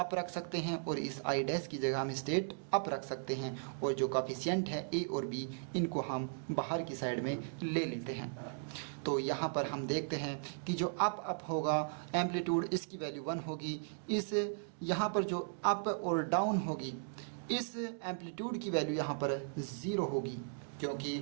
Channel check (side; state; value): left; silent; digital silence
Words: रख सकते हैं और इस आई डैश की जगह हम स्टेट अप रख सकते हैं, और जो कोफिशिएंट है ए और बी इनको हम बाहर की साइड में ले लेते हैं। तो यहाँ पर हम देखते हैं कि जो अप होगा एम्पलीट्यूड इसकी वैल्यू 1 होगी, इस यहाँ पर जो अप और डाउन होगी इस एम्पलीट्यूड की वैल्यू यहाँ पर 0 होगी, क्योंकि